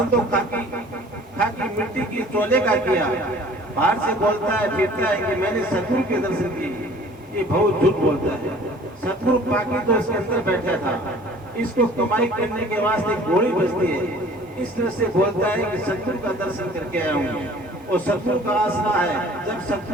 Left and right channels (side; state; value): both; normal; correlation 0.50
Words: तो खाकी मिट्टी की चोले का किया, बाहर से बोलता है फिरता है कि मैंने सतगुरु के दर्शन किए, ये बहुत झूठ बोलता है। सतगुरु पाकी तो इसके अंदर बैठा था, इसको कमाई करने के वास्ते गोली बजती है, इस तरह से बोलता है कि सतगुरु का दर्शन करके आया हूँ। और सतगुरु का आसरा है, जब